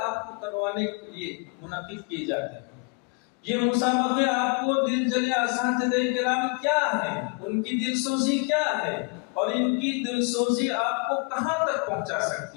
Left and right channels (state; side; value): quieter; right; 33.6 dB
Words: کو کروانے کے لیے منعقد کیے جاتے ہیں. یہ مسابقے آپ کو دل جلے اساتذہ کرام کیا ہے، ان کی دل سوزی کیا ہے، اور ان کی دل سوزی آپ کو کہاں تک پہنچا